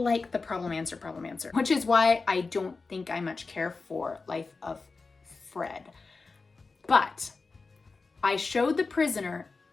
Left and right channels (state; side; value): quieter; right; 4.1 dB